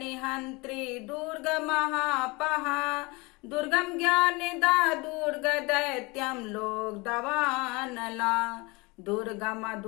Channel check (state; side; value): quieter; right; 25.6 dB